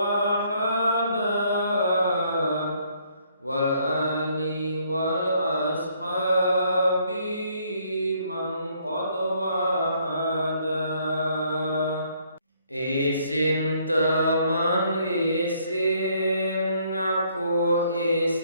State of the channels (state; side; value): inverted; both; correlation -0.67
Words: Wal ali wal ashabi man qad wahada. Isin teman isin ngaku